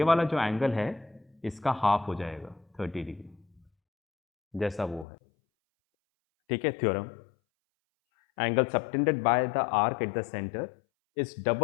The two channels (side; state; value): right; drops out; at 5.1 s